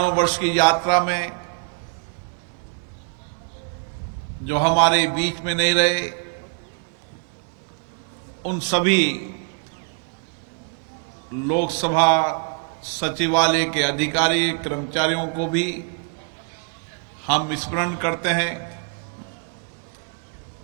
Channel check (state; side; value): quieter; left; 35.6 dB